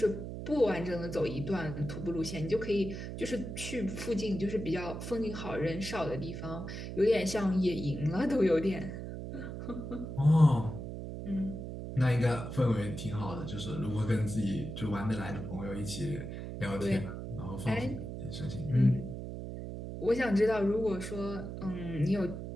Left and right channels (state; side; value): noise; right; hum, 7 dB below the sound